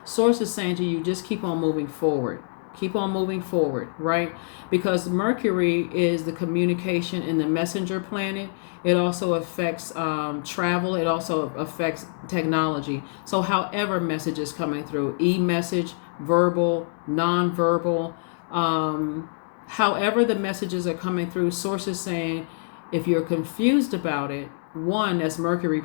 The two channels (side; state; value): right; silent; digital silence